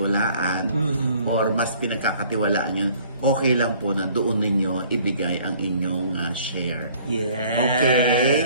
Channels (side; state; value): both; inverted; correlation -0.55